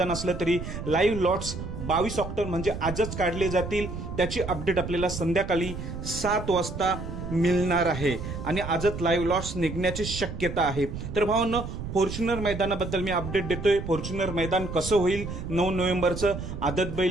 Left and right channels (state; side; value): noise; right; rumble, 7 dB below the sound